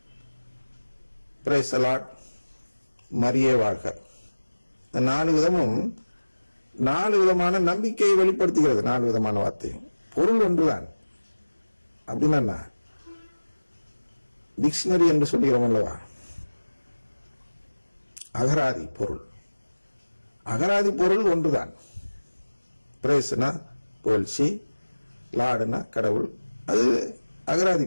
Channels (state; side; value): inverted; both; correlation -1.00